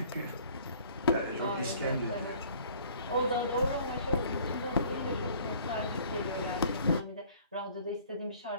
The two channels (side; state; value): both; inverted; correlation -0.54